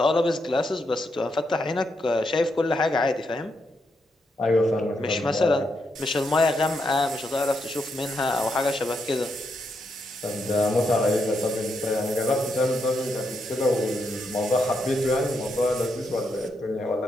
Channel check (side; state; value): both; normal; correlation 0.81